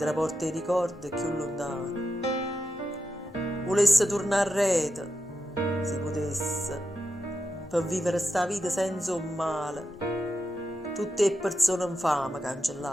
porta i ricordi più lontano. Volesse tornare a rete, si potesse, per vivere sta vita senza un male, tutte le persone infame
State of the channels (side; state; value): both; normal; correlation 0.88